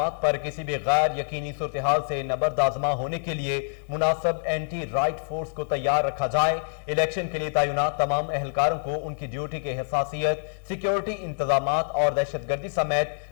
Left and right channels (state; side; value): silent; right; 60 dB below the other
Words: पर किसी भी गैर यकीनी सूरत-ए-हाल से नबर्दाजमा होने के लिए मुनासिब एंटी राइट फोर्स को तैयार रखा जाए। इलेक्शन के लिए तैनात तमाम एहलकारों को उनकी ड्यूटी के हसासियत, सिक्योरिटी इंतजामात और दहशतगर्दी समेत